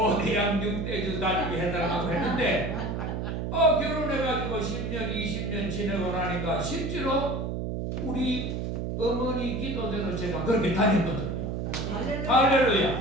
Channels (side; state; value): right; noise; hum, 3 dB below the sound